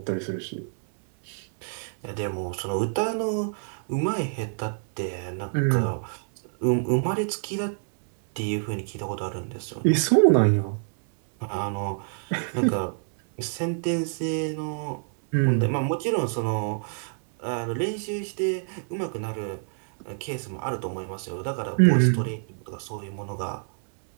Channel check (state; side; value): silent; left; 60 dB below the other